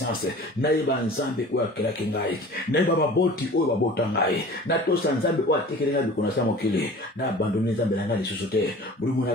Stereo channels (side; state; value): both; normal; correlation 0.43